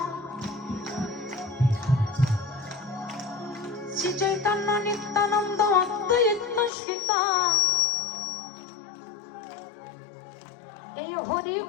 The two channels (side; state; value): right; drops out; at 6.7 s